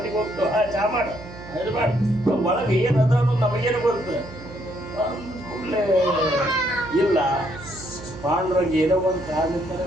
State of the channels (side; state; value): right; noise; hum, 16 dB below the sound